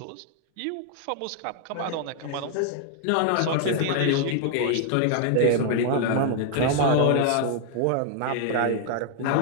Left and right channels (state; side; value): different; both; correlation 0.00